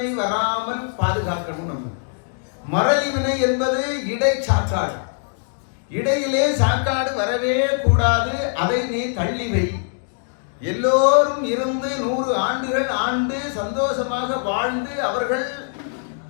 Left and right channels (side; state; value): right; silent; 64 dB below the other